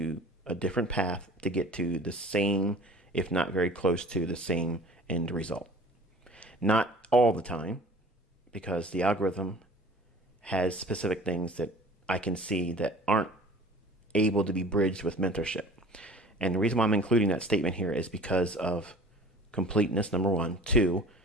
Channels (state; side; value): normal; both; correlation 0.45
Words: a different path to get to the same, if not very close to the same end result. Not all the time, because the algorithm has specific things that I can see that aren't able to be bridged with mentorship. And the reason why I'm including that statement here is because of completeness, number one. Two,